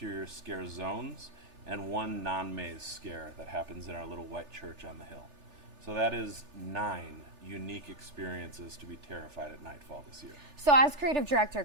scare zones and 1 non-maze scare that happens in our little white church on the hill. So that is 9 unique experiences to be terrified at Nightfall this year. So as creative director,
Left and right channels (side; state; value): left; late; 3.4 ms